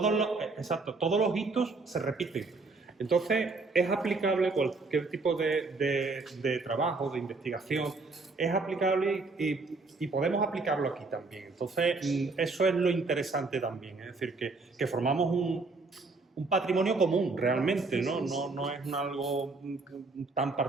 los hitos se repiten. Entonces, es aplicable cualquier tipo de trabajo, de investigación, es aplicable y podemos aplicarlo aquí también. Entonces, eso es lo interesante también, es decir, que formamos un patrimonio común realmente, ¿no? No es algo tan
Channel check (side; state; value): left; quieter; 3.8 dB